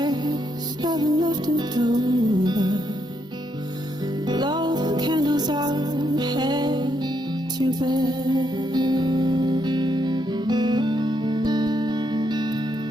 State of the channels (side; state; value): both; normal; correlation 0.77